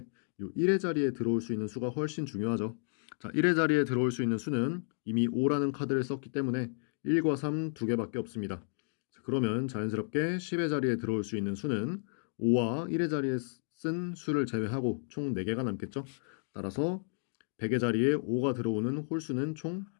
이 1의 자리에 들어올 수 있는 수가 훨씬 중요하죠. 자, 1의 자리에 들어올 수 있는 수는 이미 5라는 카드를 썼기 때문에 1과 3 두 개밖에 없습니다. 자, 그러면 자연스럽게 10의 자리에 들어올 수 있는 수는 5와 1의 자리에 쓴 수를 제외하고 총 4개가 남겠죠. 따라서 100의 자리에 5가 들어오는 홀수는 총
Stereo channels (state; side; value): silent; right; digital silence